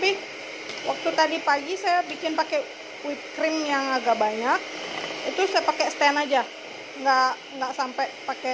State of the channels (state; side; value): identical; both; correlation 1.00